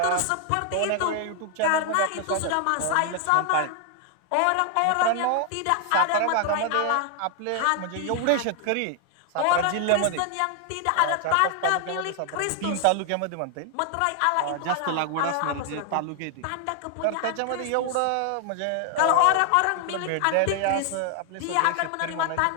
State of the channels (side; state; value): both; different; correlation 0.00